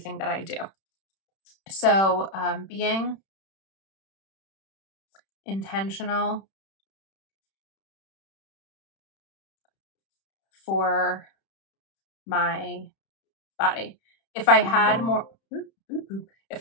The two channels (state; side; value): late; right; 31 ms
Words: that I do. So being intentional for my body. If I had more